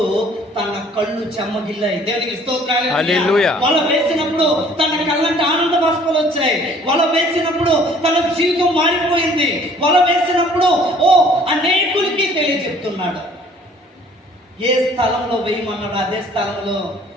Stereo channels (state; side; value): normal; both; correlation 0.55